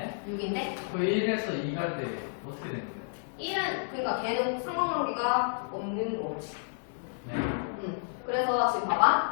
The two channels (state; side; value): silent; right; digital silence